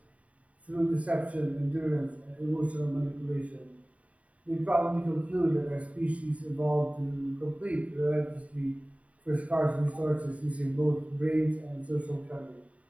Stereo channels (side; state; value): left; late; 0.067 ms